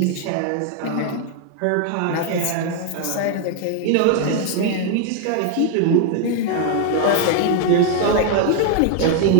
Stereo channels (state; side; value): different; both; correlation 0.01